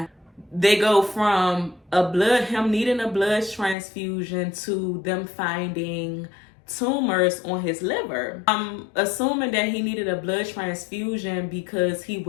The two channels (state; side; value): drops out; right; at 3.8 s